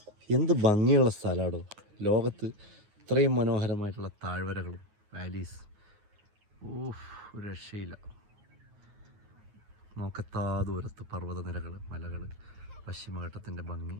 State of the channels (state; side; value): late; left; 9.4 ms